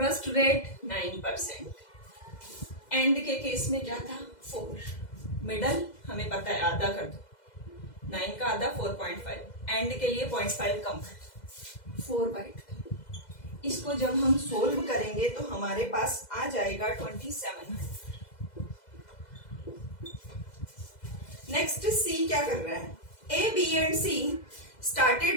rate 9%. End के case में क्या था, 4. मिडल हमें पता है, आधा कर दो, 9 का आधा 4.5, एंड के लिए 0.5 कम कर 4/2. इसको जब हम सोल्व करेंगे तो हमारे पास आ जाएगा 2700. नेक्स्ट सी क्या कर रहा है, A, B and C started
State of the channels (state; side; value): late; right; 2.0 ms